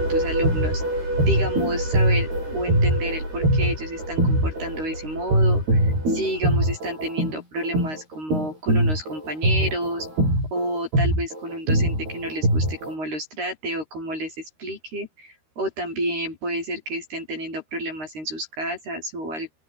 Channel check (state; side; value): late; left; 13 ms